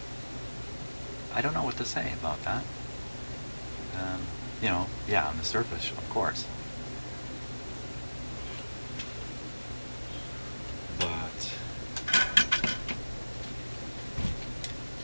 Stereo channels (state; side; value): inverted; both; correlation -1.00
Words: I don't know what to say about that. You know, yeah, on the surface, of course. But